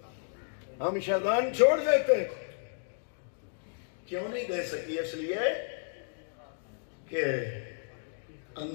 ہم شیطان چھوڑ دیتے، کیوں نہیں دے سکی؟ اس لیے کہ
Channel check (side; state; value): right; silent; digital silence